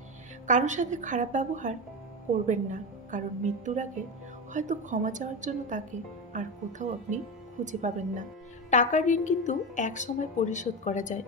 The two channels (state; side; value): normal; both; correlation 0.18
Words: কারোর সাথে খারাপ ব্যবহার করবেন না, কারণ মৃত্যুর আগে হয়তো ক্ষমা চাওয়ার জন্য তাকে আর কোথাও আপনি খুঁজে পাবেন না। টাকার ঋণ কিন্তু এক সময় পরিশোধ করা যায়,